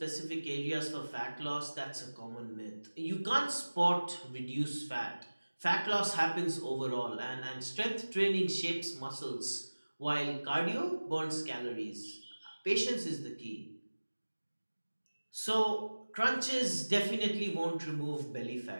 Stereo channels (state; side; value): inverted; both; correlation -1.00